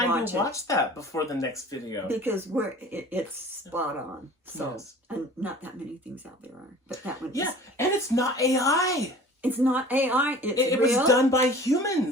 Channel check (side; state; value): both; normal; correlation 0.45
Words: to watch that before the next video. Because it's spot on. So, and not that many things out there are. But that one is. And it's not AI. It's not AI. It was done by